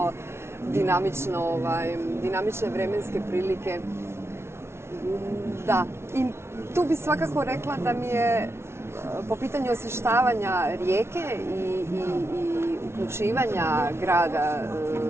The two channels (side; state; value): left; late; 0.12 ms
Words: dinamične vremenske prilike. Da, i tu bi svakako rekla da mi je po pitanju osvještavanja Rijeke i uključivanja grada